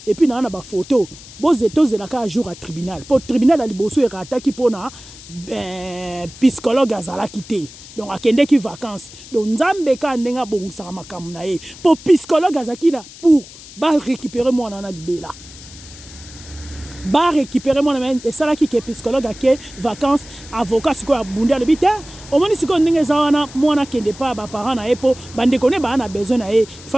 et puis na ba photo. Bozo tozela ka jour à tribunal. Pour tribunal ali boso e rataki pona psychologue azala kité. Donc akende ki vacances. Donc nzambe ka ndenga bongisa makamu na ye. Pour psychologue azakina pour ba récupérer mwana na libela. Ba récupérer mon ami et ça là qui est psychologue à qui vacances avocat ce quoi bunda le bité au moins si qu'on n'est pas moi na kende pas ba parents na epo bande connaît ba na besoin na il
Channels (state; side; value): noise; left; hiss, 18 dB below the sound